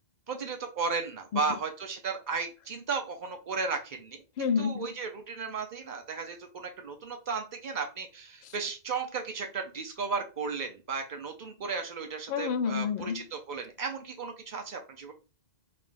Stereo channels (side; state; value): right; late; 2.0 ms